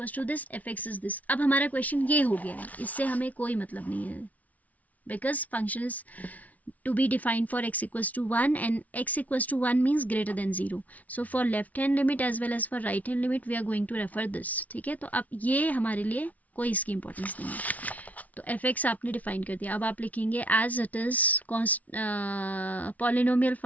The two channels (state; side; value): late; right; 0.071 ms